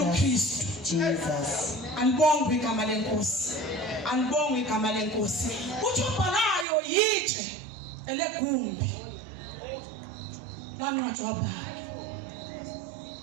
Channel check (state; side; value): drops out; left; at 6.7 s